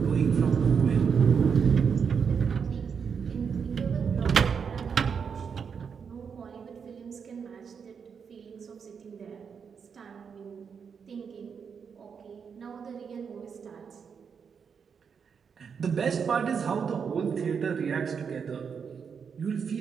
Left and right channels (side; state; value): left; quieter; 6.5 dB